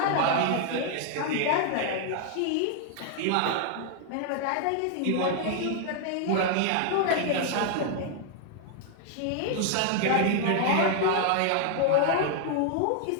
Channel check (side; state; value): both; different; correlation 0.00